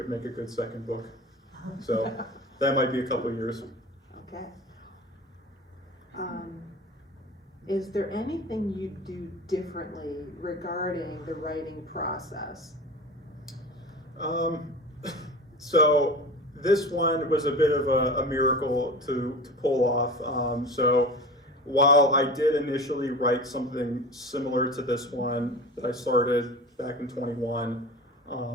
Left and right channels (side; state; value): both; normal; correlation 0.33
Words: make a good second book. So that might be a couple years. Okay. Is there anything you do differently regarding the writing process? So this one was a bit of a miracle to pull off. So while I did initially write something similar to this one that I started back in 21,